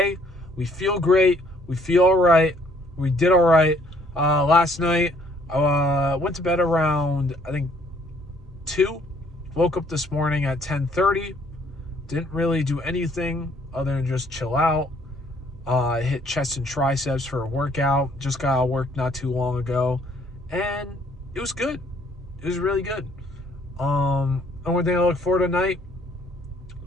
we feel great. We feel all right. We did all right. Last night, I went to bed around, I think, 2. Woke up this morning at 10:30. Didn't really do anything other than just chill out. Hit chest and triceps for a workout. Just got out of work not too long ago. And it was good. It was really good. Only thing I look forward to tonight,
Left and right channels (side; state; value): both; normal; correlation 0.63